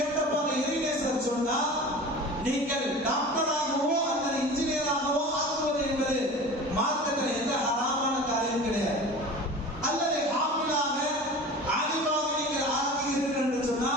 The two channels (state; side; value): normal; both; correlation 0.37